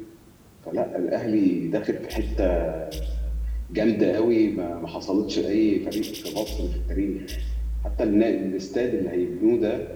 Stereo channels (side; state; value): both; identical; correlation 1.00